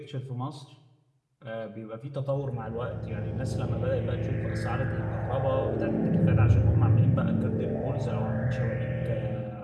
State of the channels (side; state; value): both; identical; correlation 1.00